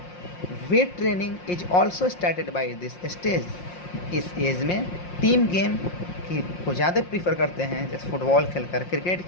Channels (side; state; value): right; late; 5.6 ms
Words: Weight training is also started by this stage. इस एज में टीम गेम की को ज़्यादा prefer करते हैं, जैसे football खेलकर, cricket